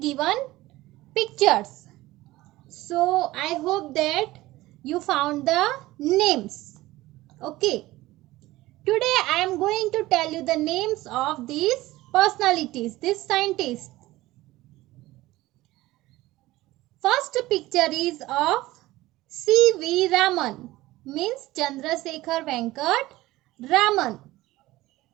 pictures. So I hope that you found the names. Okay. Today I am going to tell you the names of these personalities, these scientists. First picture is of C.V. Raman, means Chandrasekhar Venkat Raman.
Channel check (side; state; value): left; quieter; 17.8 dB